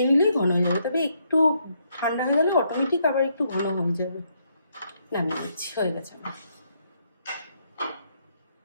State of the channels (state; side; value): inverted; both; correlation -0.74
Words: নিলেই ঘন হয়ে যাবে, তবে একটু ঠান্ডা হয়ে গেলে অটোমেটিক আবার একটু ঘন হয়ে যাবে। নামিয়ে দিচ্ছি, হয়ে গেছে আমার।